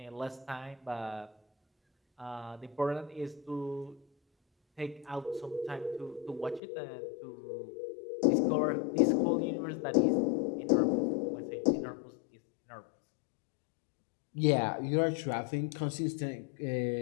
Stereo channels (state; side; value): drops out; right; at 6.6 s